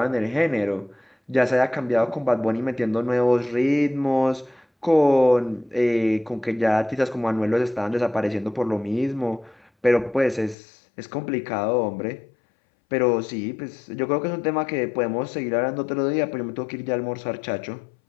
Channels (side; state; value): right; drops out; at 10.6 s